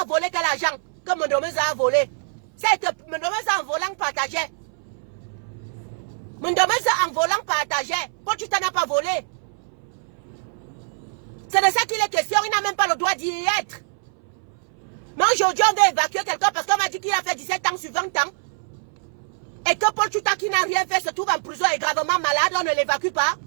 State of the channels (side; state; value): left; silent; 63 dB below the other